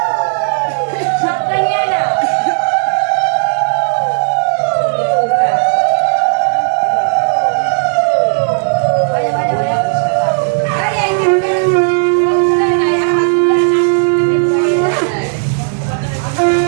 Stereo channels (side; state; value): left; silent; digital silence